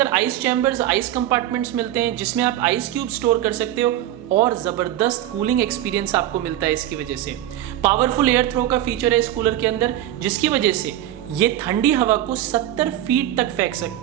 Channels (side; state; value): left; quieter; 12.8 dB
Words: आइस चैम्बर्स, आइस कंपार्टमेंट्स मिलते हैं जिसमें आप आइस क्यूब स्टोर कर सकते हो और जबरदस्त कूलिंग एक्सपीरियंस आपको मिलता है इसकी वजह से। पावरफुल एयर थ्रो का फीचर है इस कूलर के अंदर, जिसकी वजह से ये ठंडी हवा को 70 फीट तक फेंक